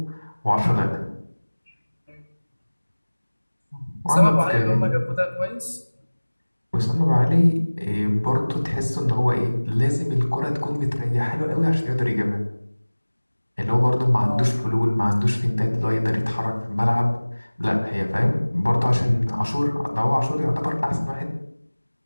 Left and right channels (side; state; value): both; inverted; correlation -1.00